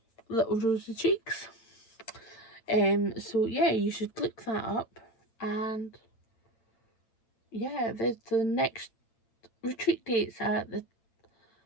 Little Rosy Cheeks. So yeah, you should look that up. And yeah, there's the next retreat dates at the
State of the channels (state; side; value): late; right; 8.9 ms